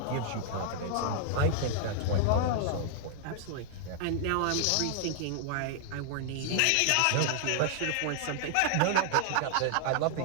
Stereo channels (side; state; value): both; different; correlation -0.01